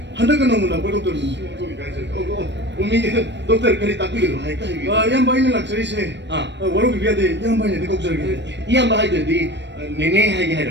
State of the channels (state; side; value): late; left; 0.51 ms